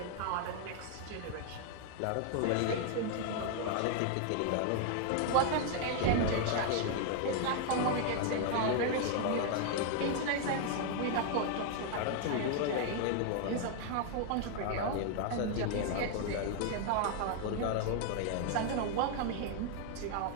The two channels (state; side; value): different; both; correlation 0.00